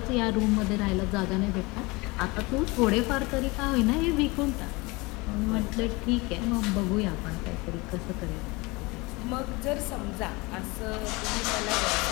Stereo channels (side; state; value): right; quieter; 24.7 dB